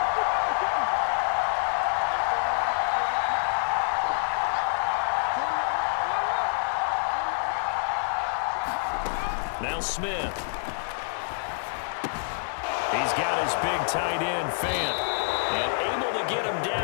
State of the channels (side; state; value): right; silent; 60 dB below the other